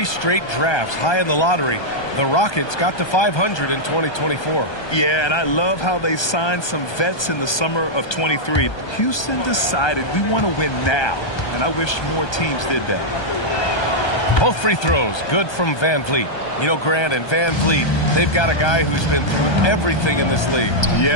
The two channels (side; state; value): right; late; 1.2 ms